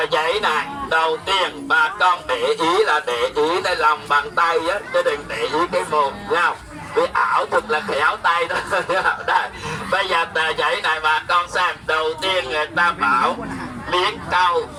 giấy này đầu tiên bà con để ý là để ý cái lòng bàn tay á, chứ đừng để ý cái mồm nhau. Vì ảo thuật là khéo tay đó. Đây, bây giờ tờ giấy này bà con xem. Đầu tiên người ta bảo miếng cau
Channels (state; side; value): identical; both; correlation 1.00